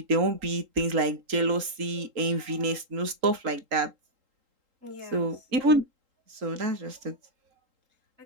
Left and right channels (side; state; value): left; late; 3.8 ms